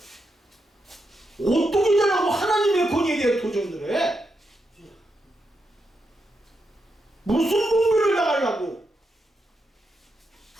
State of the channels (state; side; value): normal; both; correlation 0.84